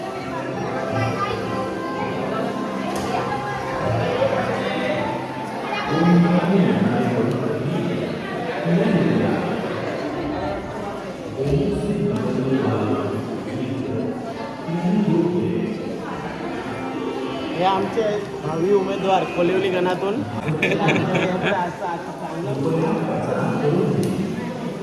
हे आमचे भावी उमेदवार कोलिवली गणातून.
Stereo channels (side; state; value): both; identical; correlation 1.00